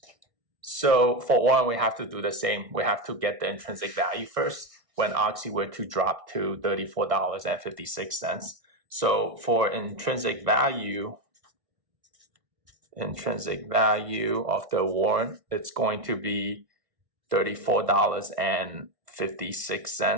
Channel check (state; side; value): late; left; 1.6 ms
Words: So for warrant, we have to do the same. We have to get the intrinsic value first when OXY were to drop to $34.56. So for intrinsic value of the warrant, it's going to be